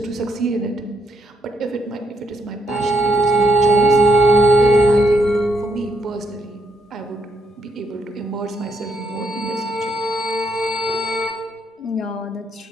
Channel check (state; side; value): normal; both; correlation 0.73